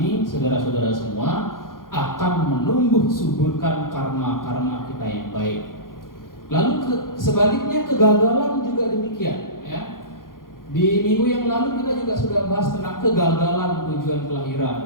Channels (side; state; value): right; late; 0.91 ms